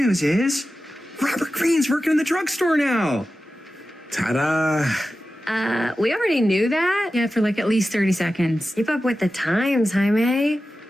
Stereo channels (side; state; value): both; normal; correlation 0.93